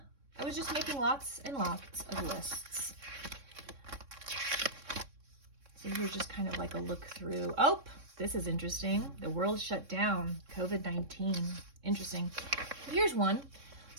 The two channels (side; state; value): left; late; 3.6 ms